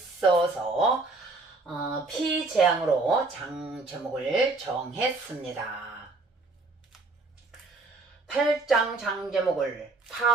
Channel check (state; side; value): quieter; left; 3.4 dB